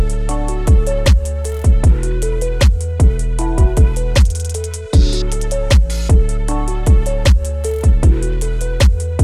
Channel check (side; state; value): both; identical; correlation 1.00